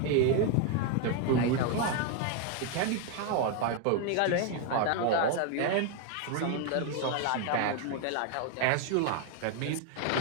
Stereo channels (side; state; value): both; different; correlation 0.01